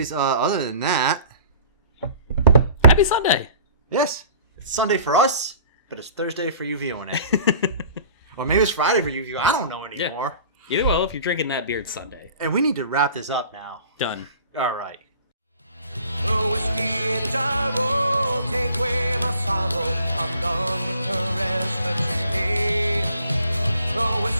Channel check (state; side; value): inverted; both; correlation -0.48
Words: other than that... Happy Sunday! Yes, it's Sunday for us, but it's Thursday for you viewing it. Or maybe it's Friday for you viewing. I don't know anymore. Yeah. Either way, if you're drinking that beer, it's Sunday. And we need to wrap this up now. Done. All right. Whiskey in the jar, take away my sorrow. I'm done with the rest of today.